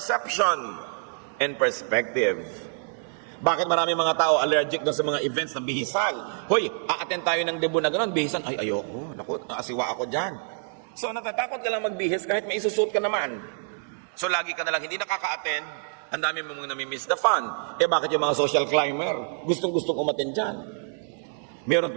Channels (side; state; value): left; silent; digital silence